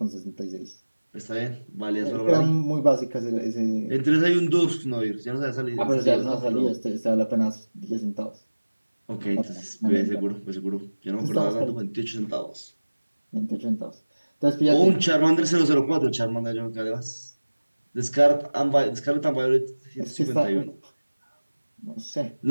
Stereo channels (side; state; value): both; inverted; correlation -1.00